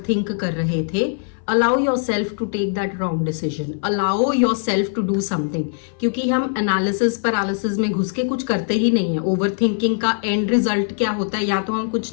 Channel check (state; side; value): silent; right; 59 dB below the other